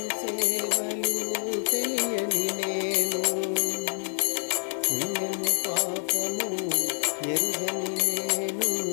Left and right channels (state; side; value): silent; right; digital silence